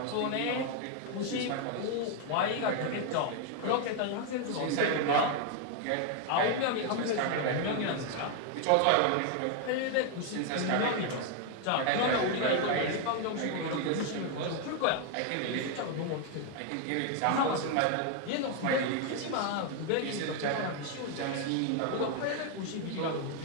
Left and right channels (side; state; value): both; different; correlation 0.01